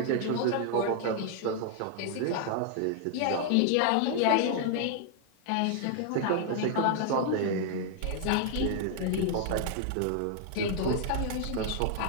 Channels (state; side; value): different; both; correlation 0.00